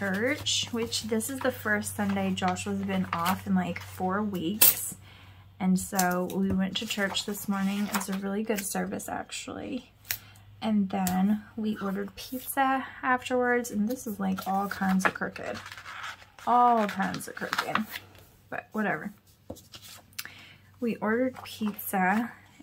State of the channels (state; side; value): identical; both; correlation 1.00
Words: which this is the first Sunday Joshua's been off in like 4 weeks. And so we went to church this morning. It was a really good service, actually. And then we ordered pizza afterwards, and this is like all kinds of crooked. All kinds of crooked, but whatever. We ordered pizza